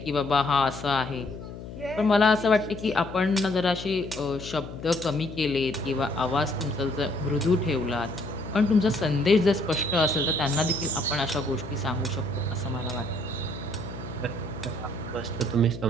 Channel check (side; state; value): left; noise; hum, 12 dB below the sound